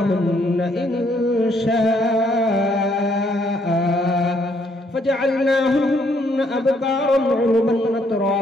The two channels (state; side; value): normal; both; correlation 0.69